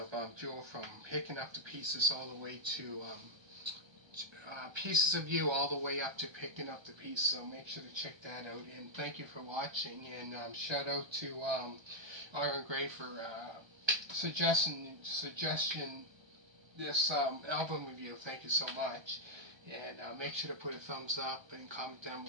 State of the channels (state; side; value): late; left; 1.3 ms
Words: Jewel, from Picking Up the Pieces all the way to Pieces of You, all the way up to Picking Up the Pieces. So make sure to check that out. And thank you for watching. And shout out to Iron Gray for suggestion this album review. Thank you so much. And make sure to put a thumbs up and comment down